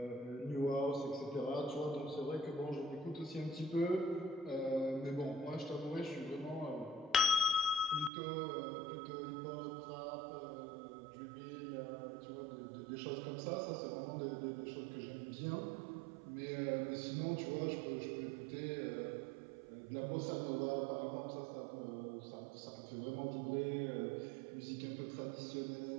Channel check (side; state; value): left; drops out; at 8.1 s